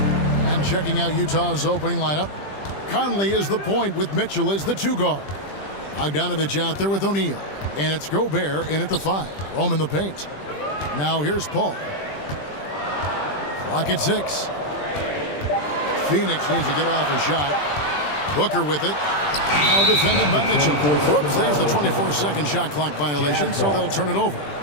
And checking out Utah's opening lineup, Conley is the point with Mitchell as the two guard. Bogdanovich out there with O'Neal. And it's Gobert in at the 5. Roam in the paint. Now here's Paul. Clock at 6. Phoenix needs to get off a shot. Booker with it. Now defended by Mitchell. Whoops, there's the 24-second shot clock violation, so they'll turn it over.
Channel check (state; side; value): late; right; 20 ms